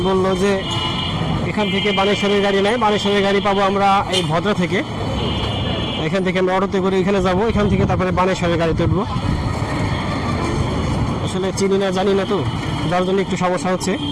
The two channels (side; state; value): both; identical; correlation 1.00